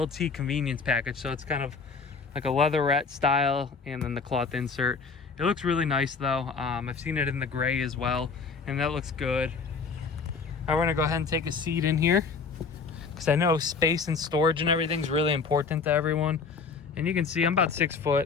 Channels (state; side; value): quieter; right; 5.0 dB